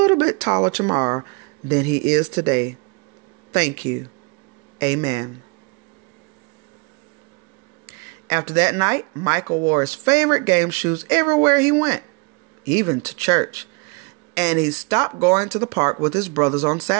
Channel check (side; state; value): left; quieter; 30.9 dB